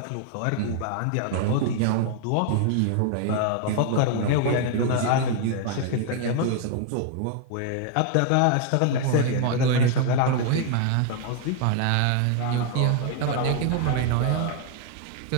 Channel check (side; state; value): both; different; correlation 0.00